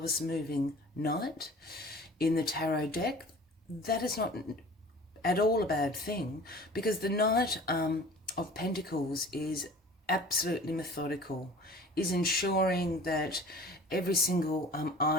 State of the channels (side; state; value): both; normal; correlation 0.44